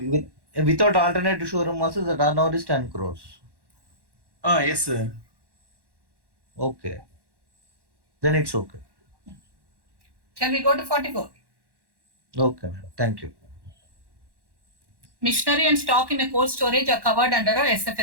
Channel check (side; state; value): left; late; 1.1 ms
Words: alternative showroom also the turnover is 10 crores. Yes, sir. Okay. Then it's okay. Shall we go to 44? Okay, thank you. Machinery and stock in a cold storage are covered under a